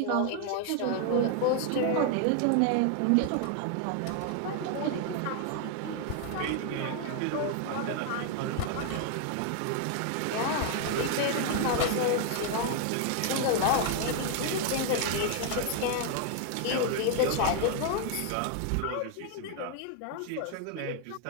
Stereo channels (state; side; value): different; both; correlation 0.00